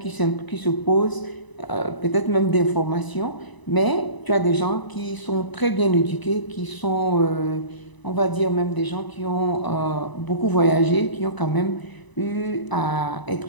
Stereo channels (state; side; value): late; right; 1.0 ms